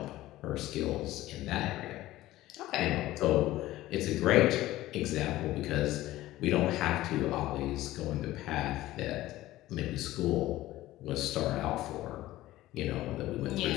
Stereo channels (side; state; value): right; quieter; 16.1 dB